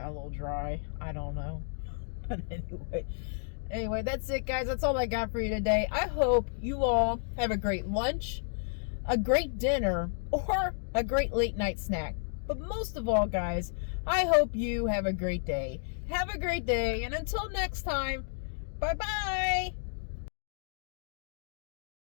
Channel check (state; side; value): silent; right; digital silence